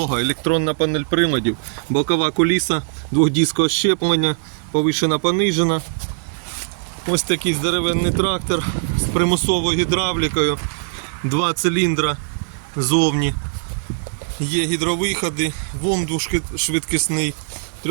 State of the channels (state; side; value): silent; left; 59 dB below the other